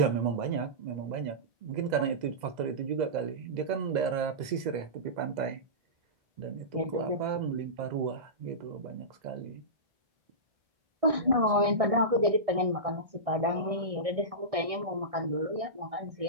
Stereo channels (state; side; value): late; left; 1.6 ms